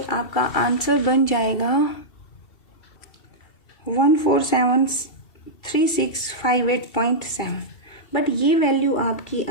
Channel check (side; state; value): right; late; 2.4 ms